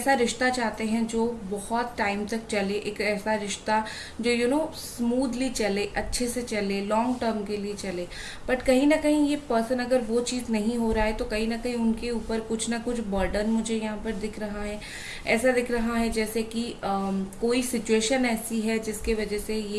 रिश्ता चाहते हैं जो बहुत टाइम तक चले, एक ऐसा रिश्ता जो स्मूथली चले, अच्छे से चले, लॉन्ग टर्म के लिए चले। बट कहीं ना कहीं ये पर्सन अगर वो चीज़ नहीं हो रहा है तो कहीं ना कहीं उनके ऊपर कुछ ना कुछ बर्डन मुझे यहाँ पर दिख रहा है। ऐसा दिख रहा है जैसे कि कोई सिचुएशन ऐसी है जिसके वजह से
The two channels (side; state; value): both; identical; correlation 1.00